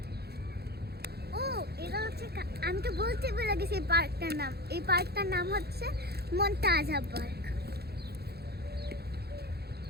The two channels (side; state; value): left; late; 0.47 ms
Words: ও এটা হচ্ছে, আমি তো বলতে ভুলে গেছি এই পার্কটার নাম। এই পার্কটার নাম হচ্ছে মন্তাজা পার্ক।